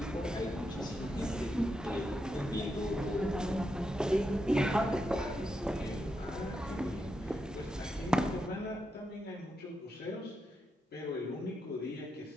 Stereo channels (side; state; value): both; normal; correlation 0.84